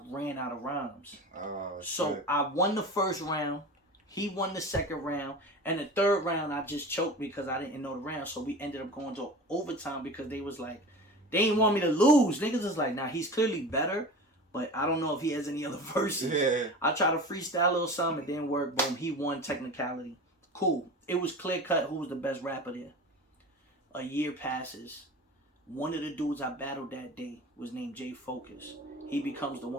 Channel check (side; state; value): both; normal; correlation 0.34